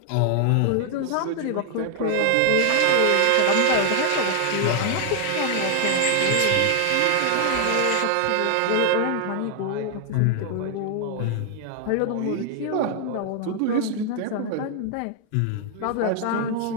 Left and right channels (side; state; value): both; different; correlation 0.00